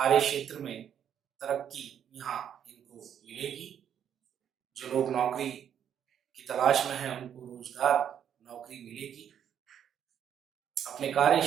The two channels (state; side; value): quieter; left; 9.1 dB